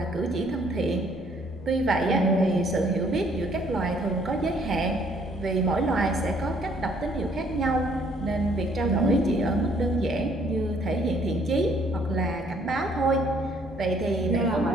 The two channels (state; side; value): normal; both; correlation 0.64